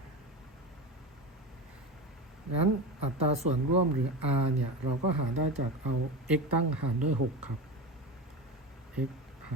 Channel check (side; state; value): both; normal; correlation 0.24